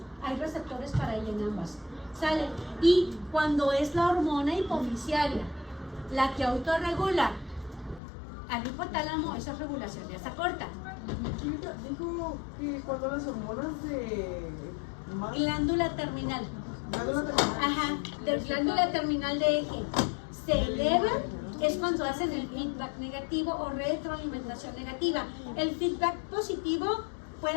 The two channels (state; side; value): drops out; right; at 8.0 s